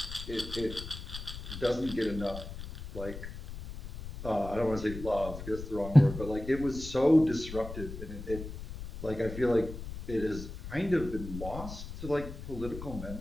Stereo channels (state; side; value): noise; left; rumble, 10 dB below the sound